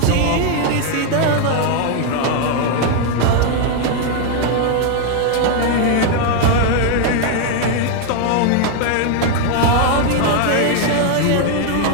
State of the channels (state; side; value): different; both; correlation 0.01